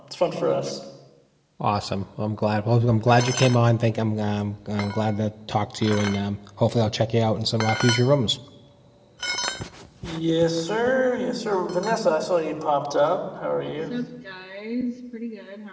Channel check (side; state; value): both; identical; correlation 1.00